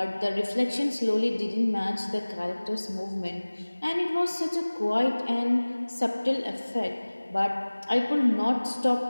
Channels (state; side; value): inverted; both; correlation -1.00